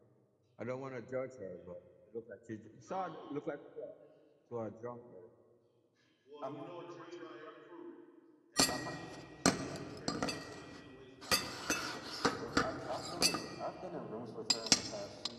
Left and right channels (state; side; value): identical; both; correlation 1.00